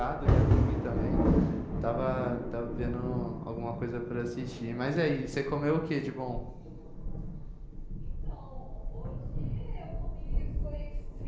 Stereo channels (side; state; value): both; identical; correlation 1.00